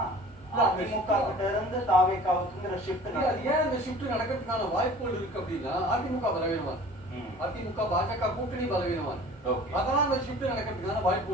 அதிமுக கிட்ட இருந்து தாவேகாவுக்குங்கிற ஷிஃப்ட் ஏன் இந்த ஷிஃப்ட் நடக்கிறதுக்கான வாய்ப்புகள் இருக்கு அப்படின்னா அதிமுக பலவீனமா இருக்கு, அதிமுக பாஜக கூட்டணி பலவீனமா இருக்கு. அதெல்லாம் அந்த ஷிஃப்ட் நடக்கிறதுக்கான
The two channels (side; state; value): both; normal; correlation 0.45